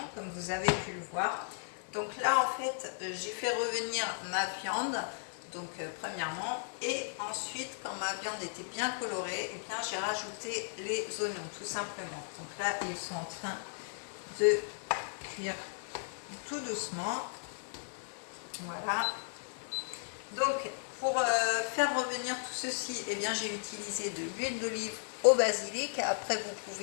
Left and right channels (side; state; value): right; silent; digital silence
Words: comme vous avez pu le voir. Donc là en fait j'ai fait revenir ma viande. Donc premièrement, et ensuite quand ma viande était bien colorée, eh bien j'ai rajouté les oignons tout simplement. Donc là ils sont en train de cuire tout doucement. Voilà. Donc pour faire revenir tout ceci, eh bien j'ai utilisé de l'huile d'olive au basilic. Après vous